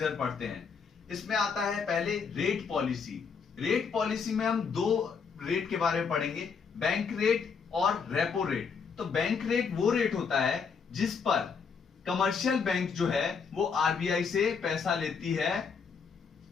पढ़ते हैं। इसमें आता है पहले रेट पॉलिसी। रेट पॉलिसी में हम दो रेट के बारे में पढ़ेंगे, बैंक रेट और रेपो रेट। तो बैंक रेट वो रेट होता है जिस पर कमर्शियल बैंक जो है वो आरबीआई से पैसा लेती है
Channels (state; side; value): quieter; right; 5.8 dB